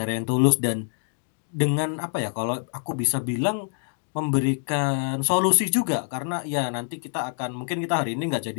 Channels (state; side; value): silent; right; 58 dB below the other